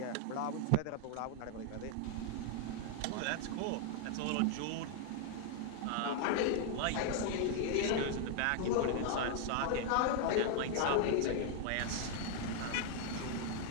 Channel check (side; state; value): both; different; correlation 0.00